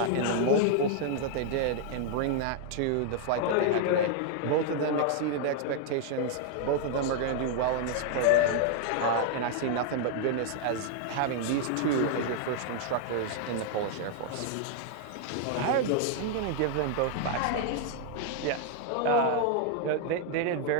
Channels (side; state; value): both; different; correlation 0.00